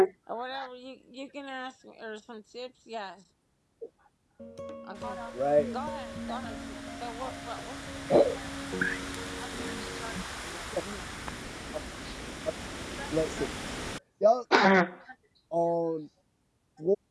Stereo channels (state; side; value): identical; both; correlation 1.00